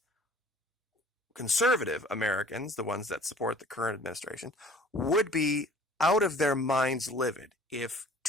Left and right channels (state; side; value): normal; both; correlation 0.50